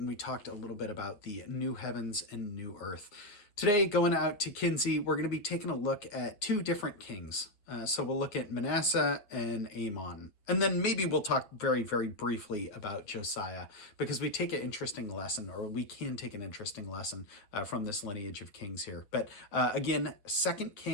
we talked a little bit about the new heavens and new earth. Today, going out to Kinsey, we're going to be taking a look at two different kings. So we'll look at Manasseh and Amon. And then maybe we'll talk very, very briefly about Josiah, because we take an interesting lesson, or we can take an interesting lesson from this lineage of kings here. But again, 2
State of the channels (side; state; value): right; late; 9.3 ms